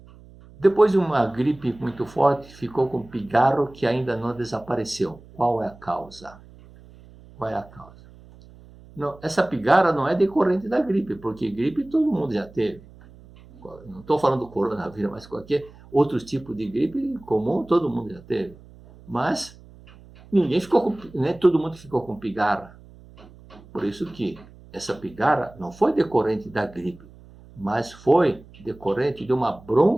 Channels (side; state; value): right; noise; hum, 22 dB below the sound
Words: Depois de uma gripe muito forte, ficou com pigarro que ainda não desapareceu. Qual é a causa? Qual é a causa? Não, essa pigarra não é decorrente da gripe, porque gripe todo mundo já teve. Não estou falando do coronavírus, mas qualquer outro tipo de gripe comum todo mundo já teve. Mas todo mundo ficou com pigarra. Por isso que essa pigarra não foi decorrente da gripe, mas foi decorrente de uma